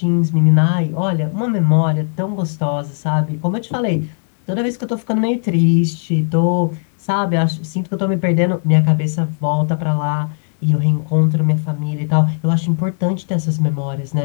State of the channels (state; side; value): silent; right; digital silence